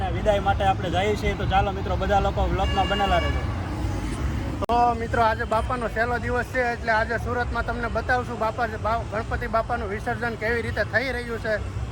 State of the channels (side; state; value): both; identical; correlation 1.00